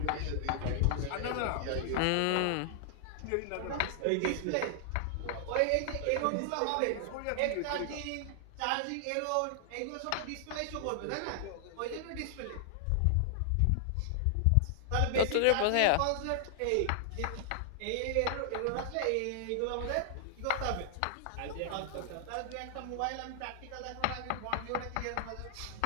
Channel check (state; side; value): different; both; correlation 0.00